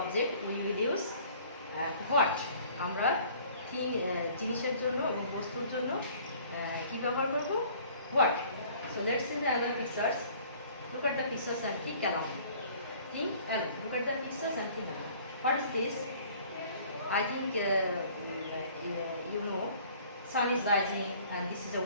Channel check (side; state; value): both; inverted; correlation -0.53